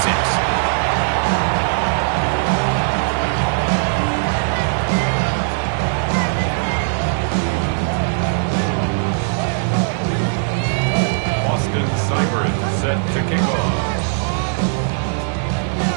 6. Set to kick off.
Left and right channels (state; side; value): silent; left; digital silence